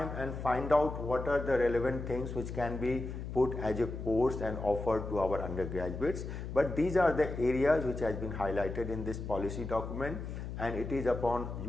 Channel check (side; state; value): left; noise; hum, 7 dB below the sound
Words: and find out what are the relevant things which can be put as a course and offered to our undergraduates, but these are the areas which has been highlighted in this policy document, and it is upon